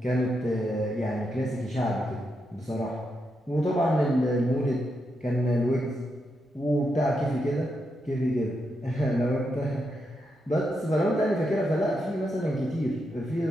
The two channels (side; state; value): both; normal; correlation 0.83